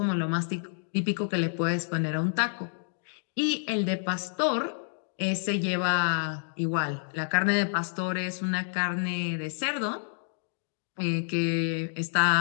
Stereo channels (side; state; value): right; silent; digital silence